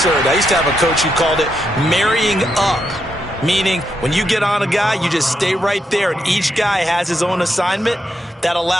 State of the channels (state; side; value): normal; both; correlation 0.81